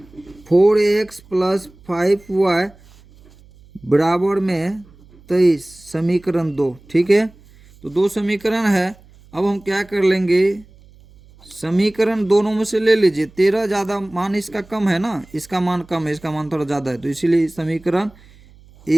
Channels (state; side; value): noise; right; hum, 26 dB below the sound